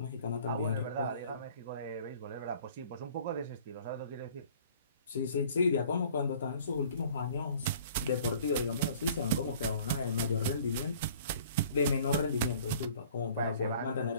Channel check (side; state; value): both; inverted; correlation -0.52